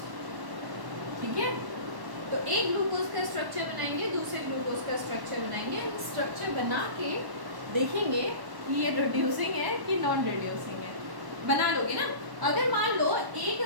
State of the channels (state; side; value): late; left; 1.1 ms